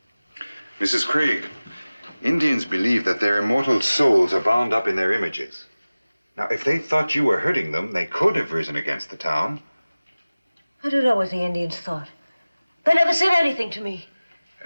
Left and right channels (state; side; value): inverted; both; correlation -0.98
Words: Mrs. Craig, Indians believe that their immortal souls are bound up in their images. Now, if they thought you were hurting them, they could have risen against the town. I don't know what the Indians thought. They never said anything to me.